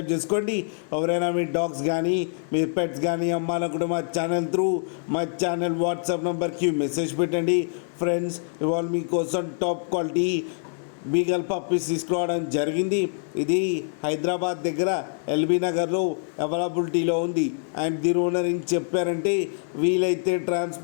చేసుకోండి. ఎవరైనా మీ డాగ్స్ కానీ మీ పెట్స్ కానీ అమ్మాలనుకుంటే మా ఛానల్ త్రూ మా ఛానల్ వాట్సాప్ నెంబర్కి మెసేజ్ పెట్టండి. ఫ్రెండ్స్, ఇవాళ మీకోసం టాప్ క్వాలిటీ బీగల్ పప్పీస్ తీసుకురావడం జరిగింది. ఇది హైదరాబాద్ దగ్గర ఎల్బీ నగర్లో అవైలబిలిటీలో ఉంది. అండ్ దీని ఓనర్ ఏం చెప్పారంటే, వీలైతే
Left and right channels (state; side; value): silent; right; digital silence